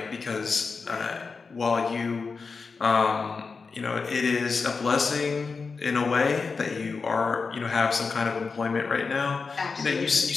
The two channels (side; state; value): right; quieter; 4.7 dB